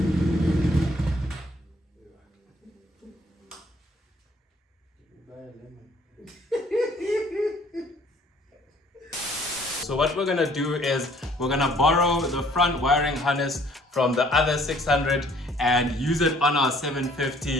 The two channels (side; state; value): both; normal; correlation 0.59